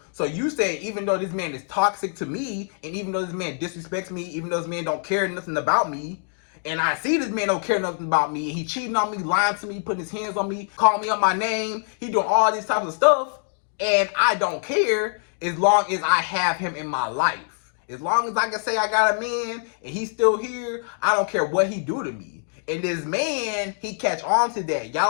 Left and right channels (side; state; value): right; silent; 58 dB below the other